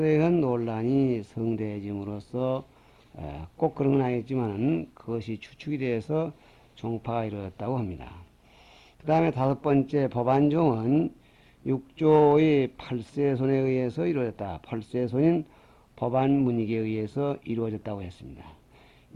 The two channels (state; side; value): identical; both; correlation 1.00